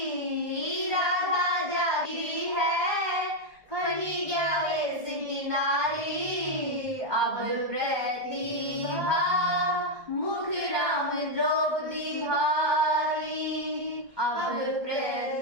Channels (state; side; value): late; left; 1.2 ms